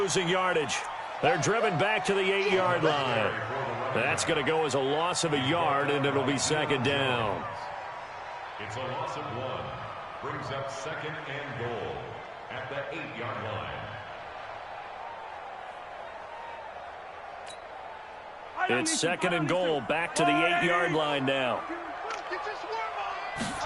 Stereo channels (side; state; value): both; identical; correlation 1.00